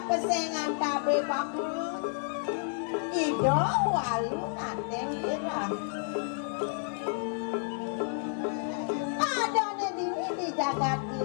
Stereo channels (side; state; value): right; silent; 58 dB below the other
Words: tabe pakulun ido walu nateng irah adone dini di jagat